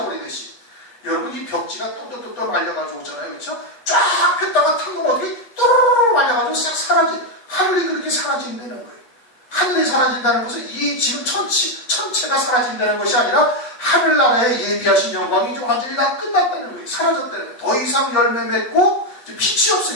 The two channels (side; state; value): right; late; 8.2 ms